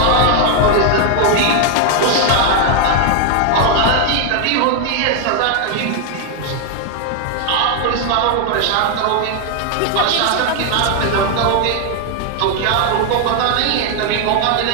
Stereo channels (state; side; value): different; both; correlation 0.00